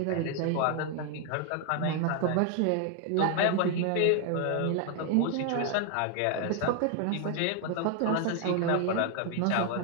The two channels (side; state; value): both; different; correlation 0.00